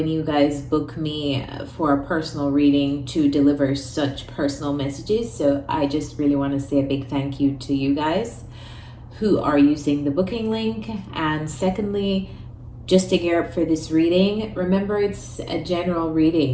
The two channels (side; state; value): both; identical; correlation 1.00